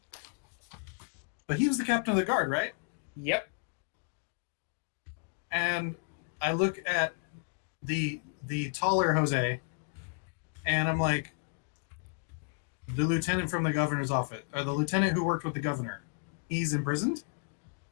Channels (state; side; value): quieter; right; 38.9 dB